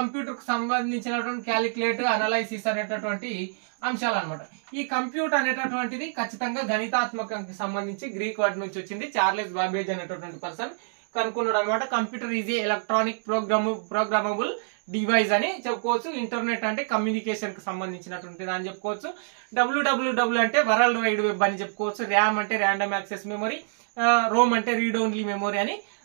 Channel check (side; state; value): left; silent; digital silence